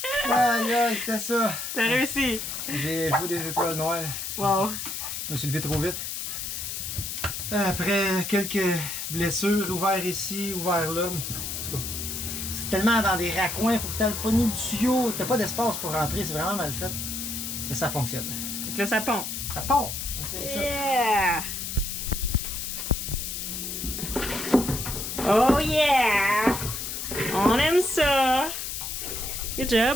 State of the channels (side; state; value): left; noise; hiss, 5 dB below the sound